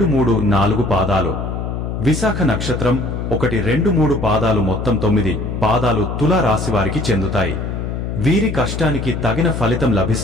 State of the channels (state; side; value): noise; left; hum, 4 dB below the sound